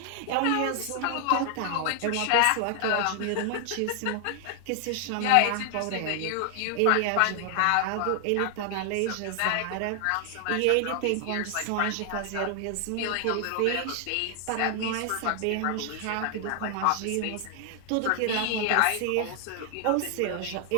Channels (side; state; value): both; different; correlation 0.00